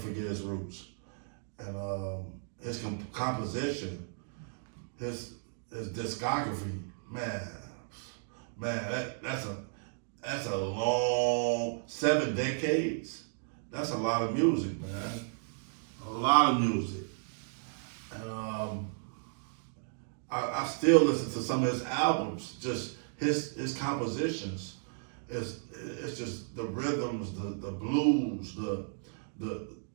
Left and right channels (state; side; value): silent; left; digital silence